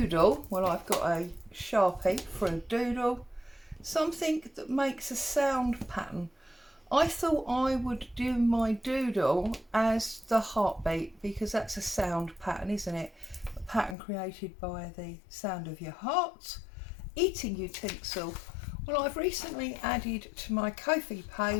Well, I've got a Sharpie for a doodle, something that makes a sound pattern. I thought I would do my doodle as the heartbeat because that's a sound pattern, isn't it? A pattern created by the sound of your heart. Eating utensil. Well, I've recently added to my Kofi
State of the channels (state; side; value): drops out; right; at 14.0 s